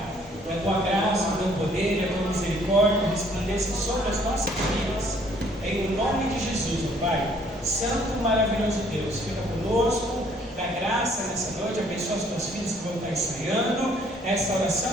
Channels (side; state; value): both; normal; correlation 0.61